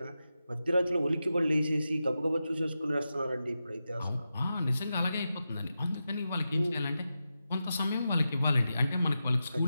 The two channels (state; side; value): inverted; both; correlation -0.90